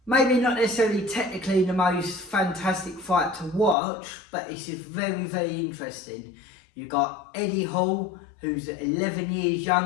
Maybe not necessarily technically the most fantastic fight to watch, but it's just very, very interesting. You've got Eddie Hall, who's 11 years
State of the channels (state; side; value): drops out; right; at 3.8 s